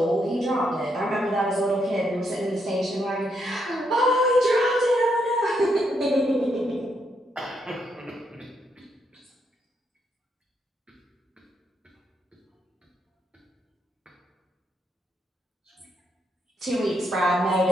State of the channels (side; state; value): both; normal; correlation 0.77